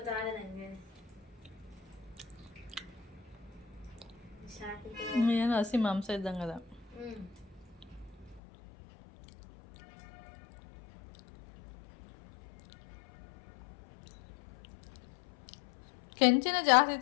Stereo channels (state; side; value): drops out; right; at 8.4 s